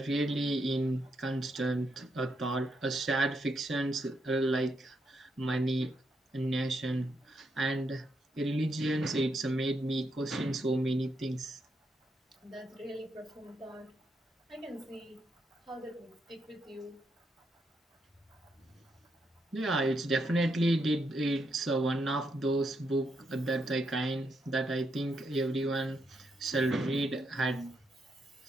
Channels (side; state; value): both; normal; correlation 0.80